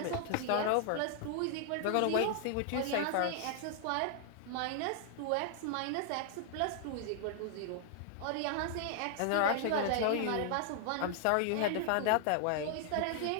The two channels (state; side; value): different; both; correlation -0.01